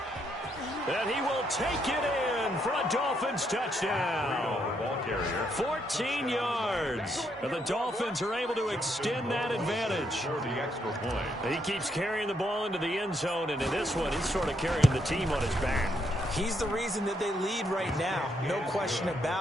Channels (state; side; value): normal; both; correlation 0.76